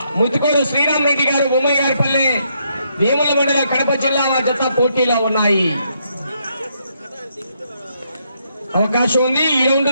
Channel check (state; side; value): inverted; both; correlation -0.75